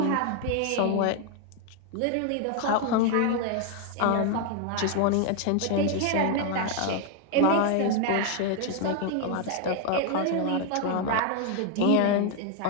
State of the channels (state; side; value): different; both; correlation 0.00